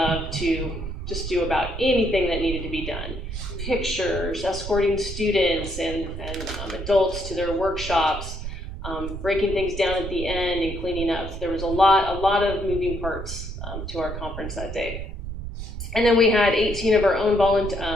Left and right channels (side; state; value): right; noise; rumble, 7 dB below the sound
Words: to just do about anything that needed to be done. Pictures, escorting students and adults to their workshops, breaking things down at the end and cleaning up. There was a lot of moving parts to our conference that day. And then we had 18 of our own